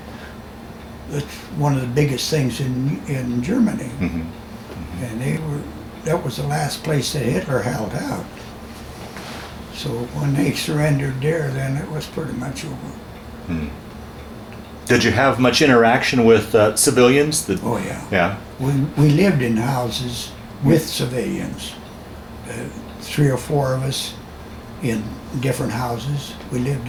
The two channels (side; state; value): both; identical; correlation 1.00